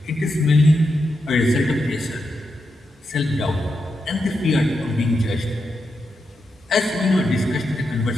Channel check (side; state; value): both; normal; correlation 0.86